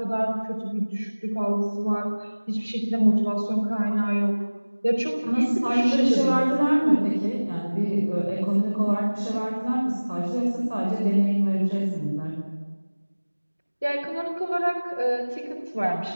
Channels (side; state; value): both; inverted; correlation -1.00